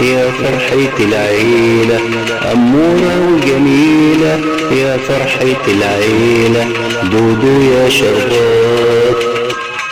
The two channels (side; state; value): both; identical; correlation 1.00